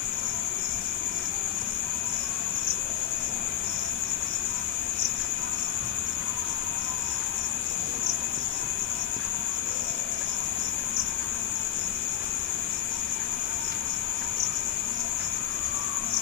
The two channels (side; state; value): right; quieter; 11.1 dB